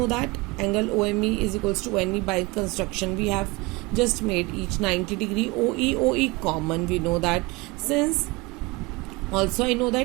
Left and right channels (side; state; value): left; quieter; 24.6 dB